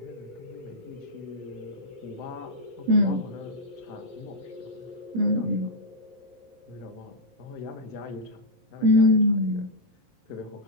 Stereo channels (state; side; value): late; left; 17 ms